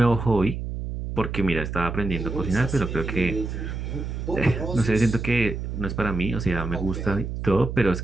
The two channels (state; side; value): noise; right; hum, 5 dB below the sound